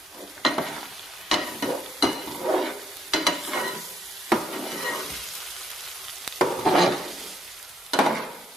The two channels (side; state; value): both; normal; correlation 0.73